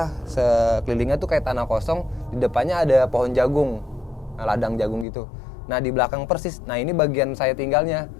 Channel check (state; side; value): drops out; right; at 5.1 s